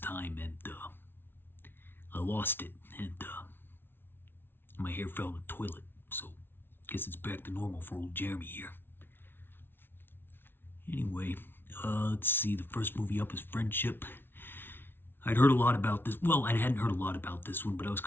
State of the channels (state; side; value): late; right; 0.11 ms